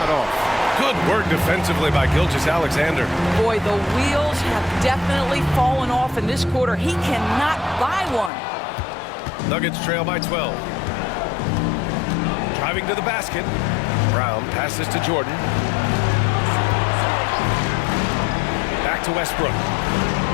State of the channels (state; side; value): drops out; right; at 8.3 s